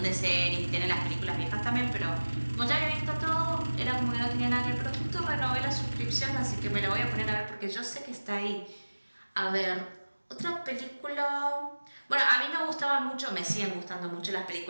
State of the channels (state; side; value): inverted; both; correlation -1.00